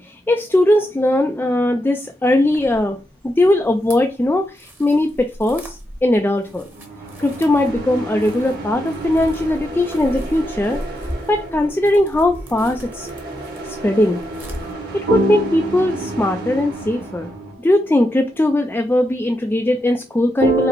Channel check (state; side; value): normal; both; correlation 0.84